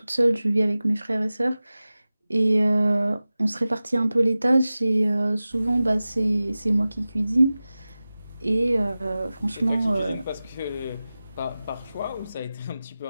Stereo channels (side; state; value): both; inverted; correlation -0.96